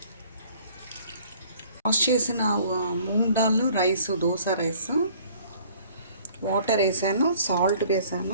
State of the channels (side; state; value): both; inverted; correlation -0.55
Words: వాష్ చేసిన moong dal rice, dosa rice, water వేసాను, సాల్ట్